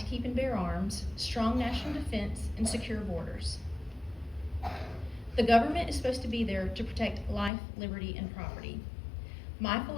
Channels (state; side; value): drops out; right; at 7.5 s